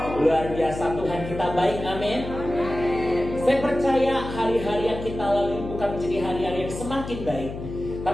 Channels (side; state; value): left; noise; hum, 9 dB below the sound